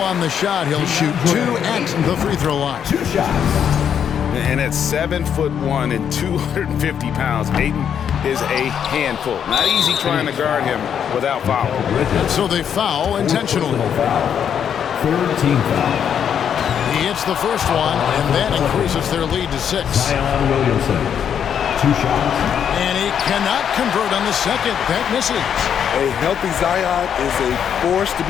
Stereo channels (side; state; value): right; quieter; 8.4 dB